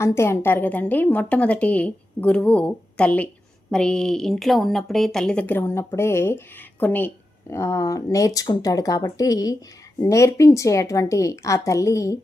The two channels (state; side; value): normal; both; correlation 0.90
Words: అంటారు కదండి. మొట్టమొదటి గురువు తల్లి. మరి ఇంట్లో ఉన్నప్పుడే, తల్లి దగ్గర ఉన్నప్పుడే కొన్ని నేర్చుకుంటాడు కాబట్టి నేర్పించేటువంటి ఆ తల్లి